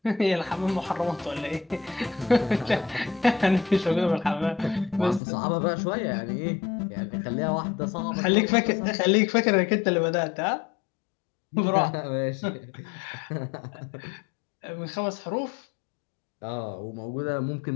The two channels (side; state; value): right; drops out; at 5.2 s